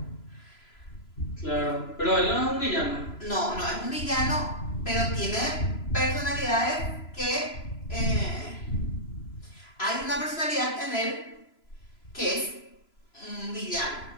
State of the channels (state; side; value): late; right; 3.0 ms